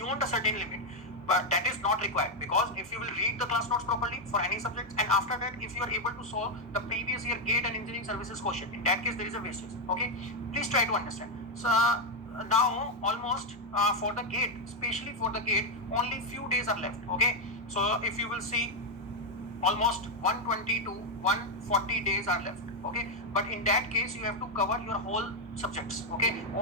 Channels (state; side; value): normal; both; correlation 0.04